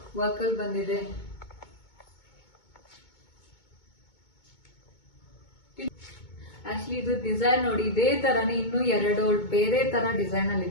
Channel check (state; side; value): late; right; 2.2 ms